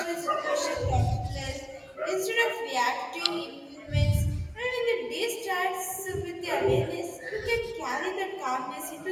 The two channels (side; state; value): both; identical; correlation 1.00